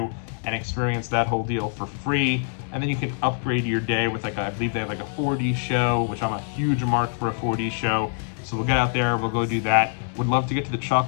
and experience that whole deal for free. And then you can upgrade your day with I believe they have like a 4D show, which I'm a huge mark for a 4D show. So we'll get out there, we'll go do that. Would love to get to the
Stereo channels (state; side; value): silent; right; digital silence